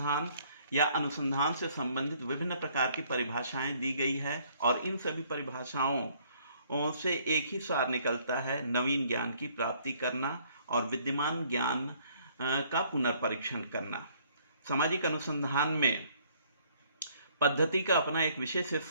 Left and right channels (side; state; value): both; inverted; correlation -0.63